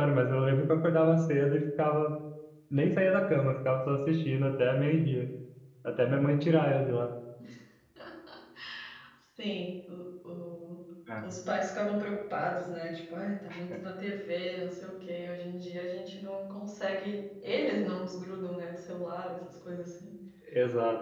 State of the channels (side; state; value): both; identical; correlation 1.00